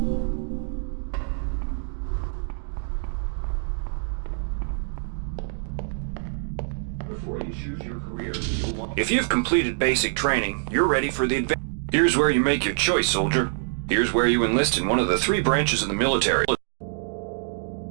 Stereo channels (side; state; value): left; silent; digital silence